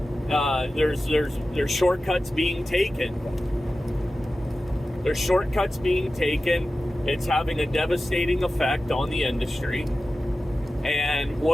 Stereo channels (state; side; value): normal; both; correlation 0.94